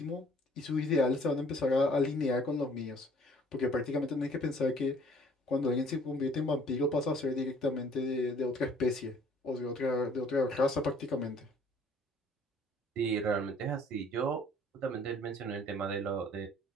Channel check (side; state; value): both; normal; correlation 0.57